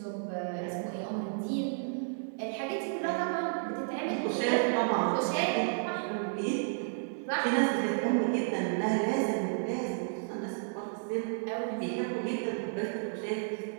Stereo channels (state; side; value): silent; left; digital silence